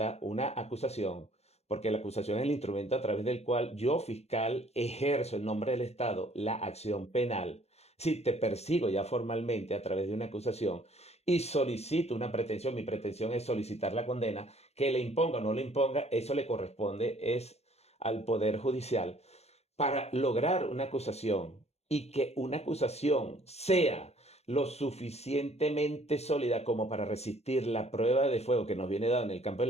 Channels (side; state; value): right; late; 0.31 ms